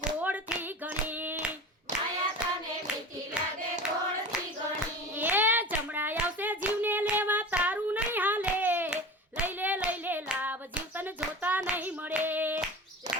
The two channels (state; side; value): normal; both; correlation 0.34